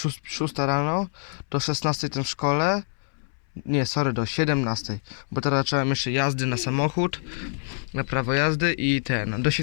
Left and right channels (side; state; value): right; silent; 61 dB below the other